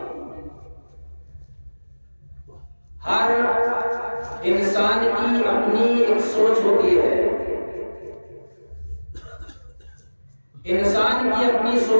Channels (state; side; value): inverted; both; correlation -1.00